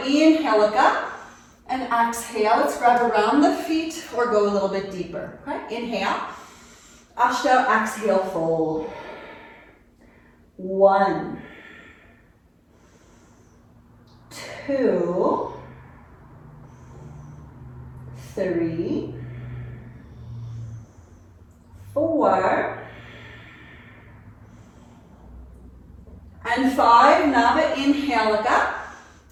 inhale, look up, and exhale. Let's grab around the feet or go a little bit deeper. Okay, inhale. Ashta, exhale, fold. 1, 2, 3, 4, and 5. Now inhale, look up,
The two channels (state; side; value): identical; both; correlation 1.00